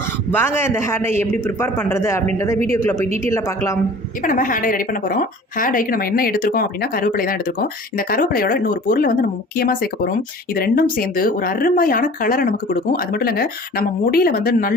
வாங்க இந்த ஹேர் டை எப்படி ப்ரிப்பேர் பண்ணுறது அப்படின்றத வீடியோக்குள்ளே போய் டீட்டெயிலாக பார்க்கலாம். இப்போ நம்ம ஹேர் டை ரெடி பண்ண போகிறோம். ஹேர் டைக்கு நம்ம என்ன எடுத்துருக்கோம் அப்படின்னா கருவேப்பிலை தான் எடுத்துருக்கோம். இந்த கருவேப்பிலையோட இன்னொரு பொருளை வந்து நம்ம முக்கியமாக சேர்க்க போகிறோம். இது ரெண்டும் சேர்ந்து ஒரு அருமையான கலரை நமக்கு கொடுக்கும். அது மட்டும் இல்லைங்க, நம்ம முடியில் வந்து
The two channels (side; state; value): both; normal; correlation 0.45